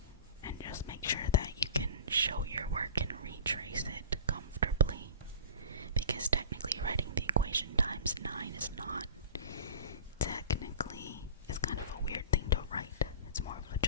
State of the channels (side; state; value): both; inverted; correlation -0.37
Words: And just make sure that you can show your work and retrace it comfortably. Because technically writing the equation times 9 is not